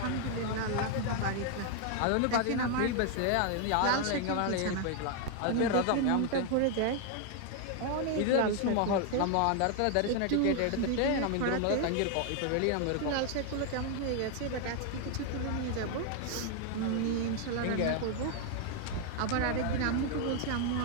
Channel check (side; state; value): both; different; correlation 0.01